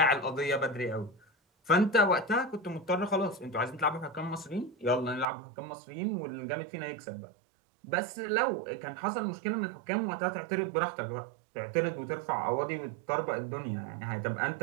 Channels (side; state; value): left; drops out; at 5.2 s